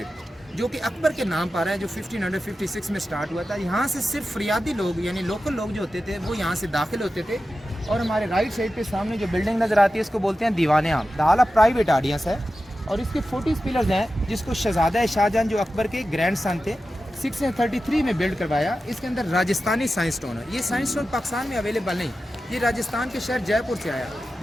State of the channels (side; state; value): both; normal; correlation 0.93